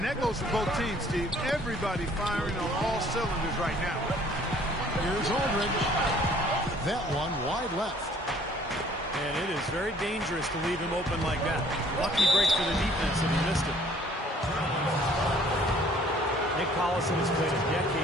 that goes for both teams, Steve. Everybody firing on all cylinders right now. Here's Aldridge. That one wide left. And it is very dangerous to leave him open like that. Lucky break for the defense that he missed it. Nick Collison has played a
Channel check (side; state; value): both; normal; correlation 0.57